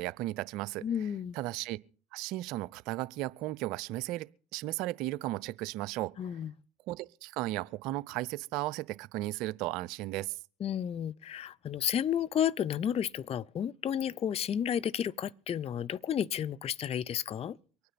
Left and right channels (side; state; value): both; normal; correlation 0.37